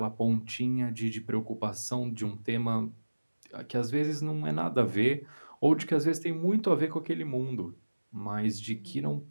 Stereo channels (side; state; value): both; inverted; correlation -1.00